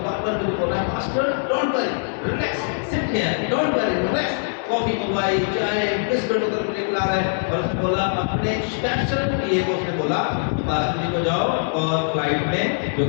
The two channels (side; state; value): right; silent; digital silence